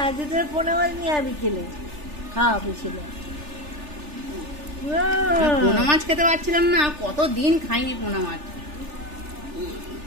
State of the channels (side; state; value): left; late; 3.4 ms